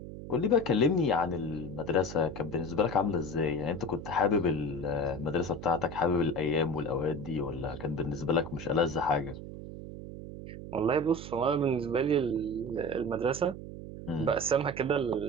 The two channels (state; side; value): noise; right; hum, 11 dB below the sound